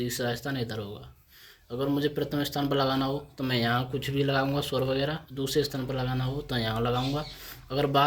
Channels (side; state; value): both; identical; correlation 1.00